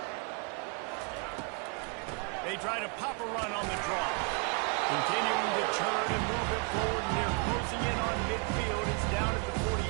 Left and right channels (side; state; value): left; quieter; 35.8 dB